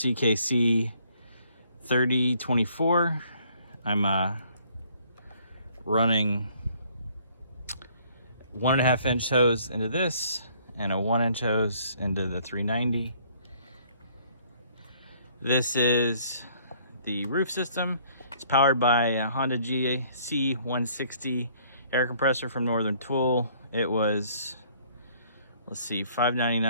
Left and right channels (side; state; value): both; inverted; correlation -0.61